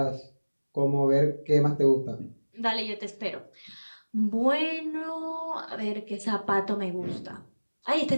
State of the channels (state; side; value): inverted; both; correlation -1.00